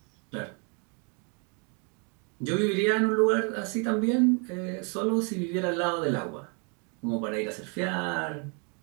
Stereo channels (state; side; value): quieter; left; 36.4 dB